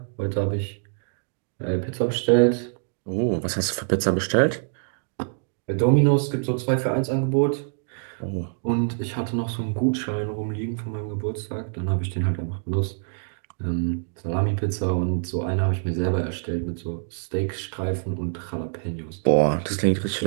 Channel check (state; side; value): silent; left; 62 dB below the other